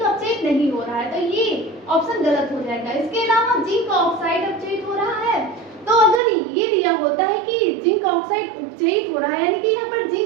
अपचयित नहीं हो रहा है, तो ये ऑप्शन गलत हो जाएगा। इसके अलावा जिंक ऑक्साइड अपचयित हो रहा है, तो अगर ये दिया होता है कि जिंक ऑक्साइड उपचयित हो रहा है यानी कि यहाँ पर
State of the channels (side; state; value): left; drops out; at 6.2 s